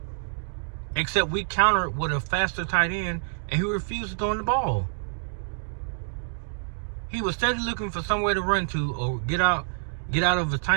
Except we countered with a faster tight end, and he refused to throw in the ball. He was steadily looking for somewhere to run to or get out of a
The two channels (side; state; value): left; silent; digital silence